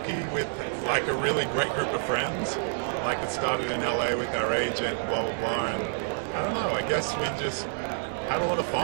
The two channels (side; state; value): left; silent; digital silence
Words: with like a really great group of friends. Like it started in LA with our agent, blah blah blah, and I don't know, I guess we just had a lot of